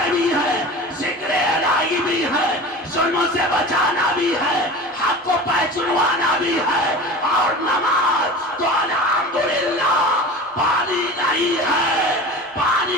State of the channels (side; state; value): both; normal; correlation 0.35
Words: بھی ہے، ذکر الہی بھی ہے، ظلموں سے بچانا بھی ہے، حق کو پہچانوانا بھی ہے، اور نماز تو الحمدللہ پانی نہیں ہے،